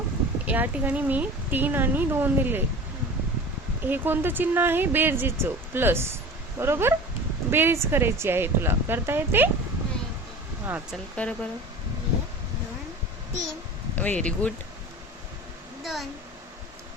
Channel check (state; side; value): normal; both; correlation 0.37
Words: या ठिकाणी मी 3 आणि 2 दिले. हे कोणतं चिन्ह आहे? बेरजेचं, प्लस. बरोबर. बेरीज करायची आहे. तुला करता येते? हा चल कर बरं. 3 व्हेरी गुड. 2